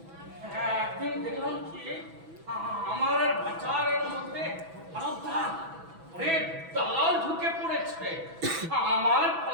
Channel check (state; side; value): late; left; 6.1 ms